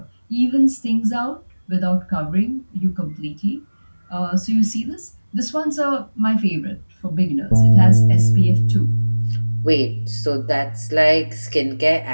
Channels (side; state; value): both; inverted; correlation -1.00